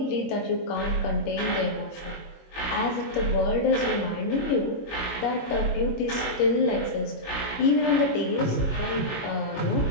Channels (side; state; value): right; late; 21 ms